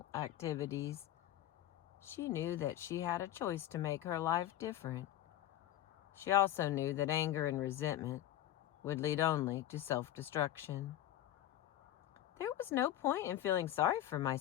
activities, she knew that she had a choice to make her life different. She also knew that anger and resentment would lead only to self-destruction. There was no point in feeling sorry for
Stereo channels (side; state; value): right; quieter; 12.7 dB